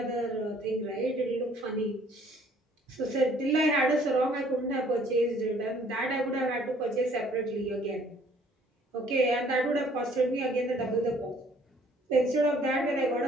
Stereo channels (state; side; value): normal; both; correlation 0.59